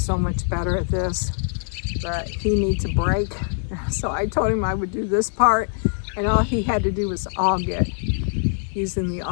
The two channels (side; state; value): right; silent; digital silence